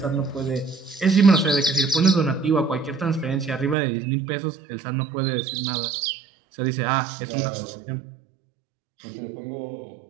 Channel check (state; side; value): drops out; left; at 3.8 s